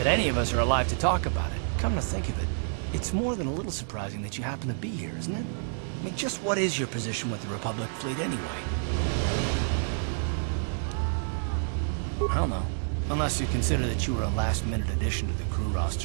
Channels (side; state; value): left; silent; digital silence